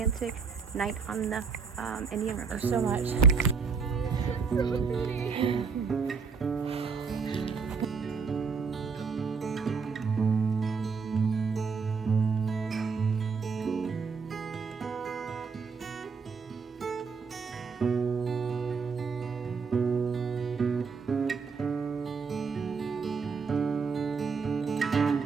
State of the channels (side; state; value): left; quieter; 5.3 dB